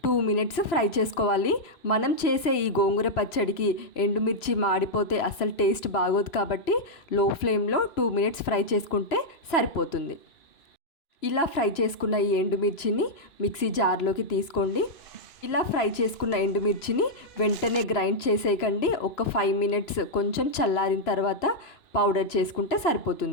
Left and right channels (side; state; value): right; late; 3.0 ms